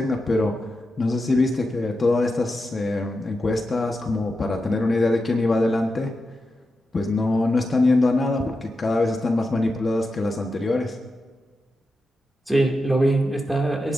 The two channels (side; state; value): both; normal; correlation 0.89